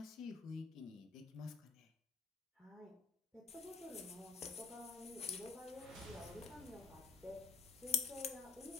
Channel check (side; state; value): right; quieter; 4.8 dB